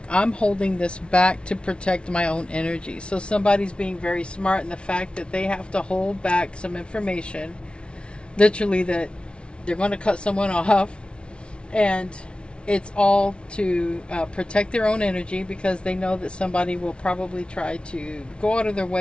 I'm holding this back to protect my own energy. So somebody's being very smart in the fact that they have to hold back some information. Literally that they're going to cut someone off. And it's all to protect their own energy, because they know that somebody will probably try to go out of their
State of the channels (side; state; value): right; late; 0.058 ms